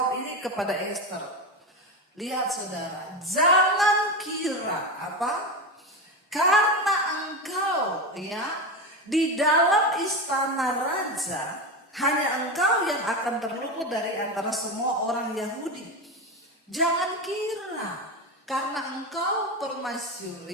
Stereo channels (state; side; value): normal; both; correlation 0.18